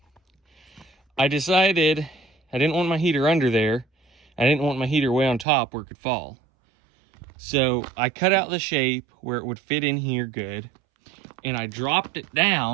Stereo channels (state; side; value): drops out; left; at 5.5 s